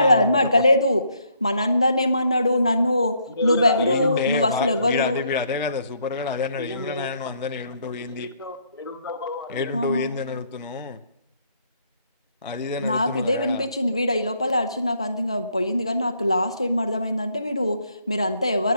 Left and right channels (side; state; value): both; inverted; correlation -0.70